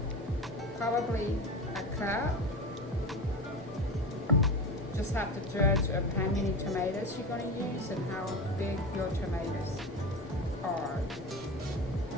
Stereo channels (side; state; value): both; normal; correlation 0.26